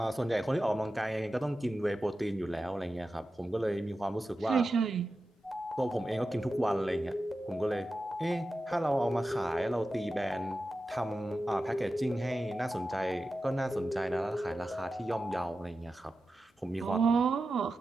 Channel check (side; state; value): both; normal; correlation 0.92